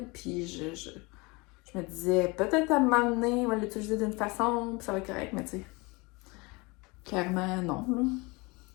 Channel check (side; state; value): right; quieter; 26.1 dB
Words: Puis je me disais, peut-être à un moment donné, on va l'utiliser d'une façon, puis ça va être correct, mais tu sais, clairement non. Là.